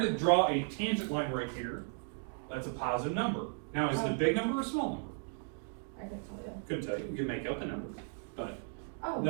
draw a tangent line right here, that's a positive number. Now, is it a big number or a small number? I can tell you. Couldn't tell you, we can make up a number, but Oh.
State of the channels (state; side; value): silent; left; 54 dB below the other